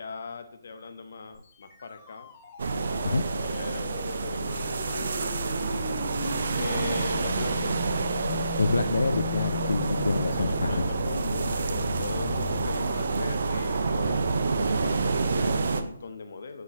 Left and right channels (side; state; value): both; inverted; correlation -0.80